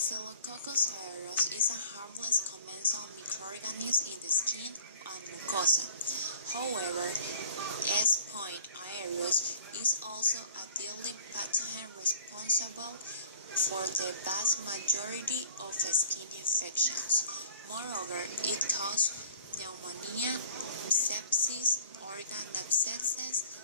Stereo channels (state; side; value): inverted; both; correlation -0.50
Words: aureus is a harmless commensal microorganism in the skin and mucosa. However, S. aureus is also a deadly pathogen responsible for the vast majority of skin infections. Moreover, it causes pneumonia, sepsis, organ abscesses,